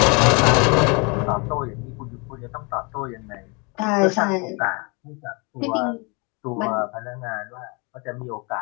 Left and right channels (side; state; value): right; quieter; 30.9 dB